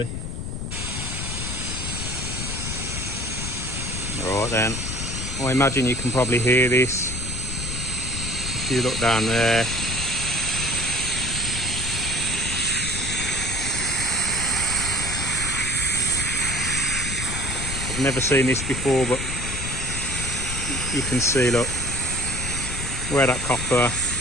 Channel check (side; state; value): left; noise; rumble, 5 dB below the sound